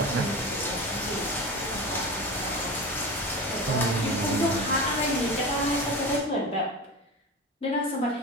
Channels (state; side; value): normal; both; correlation 0.28